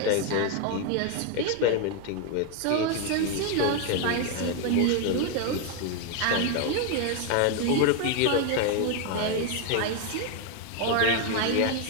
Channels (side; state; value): both; different; correlation 0.01